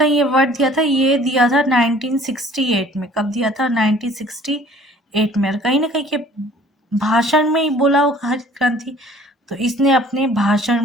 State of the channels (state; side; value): normal; both; correlation 0.52